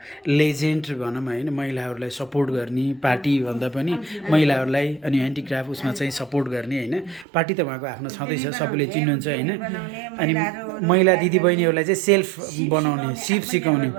लेजेन्ड भनौँ होइन महिलाहरूलाई सपोर्ट गर्ने पार्टी भन्दा पनि महिलाहरूलाई अनि ह्यान्डिक्राफ्ट उसमा चाहिँ सपोर्ट गर्ने होइन पार्टी त उहाँको आफ्नो छँदैछ सबैले चिन्नुहुन्छ होइन अनि महिला दिदीबहिनीहरूलाई चाहिँ सेल्फ बनाउने सिप सिकाउने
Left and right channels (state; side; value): drops out; left; at 7.2 s